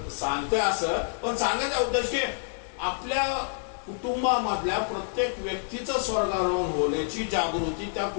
सांगतोय असं, पण सांगायचा उद्देश की आपल्या कुटुंबामधल्या प्रत्येक व्यक्तीचं स्वर्गारोहण होण्याची जागृती त्या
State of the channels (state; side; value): silent; right; digital silence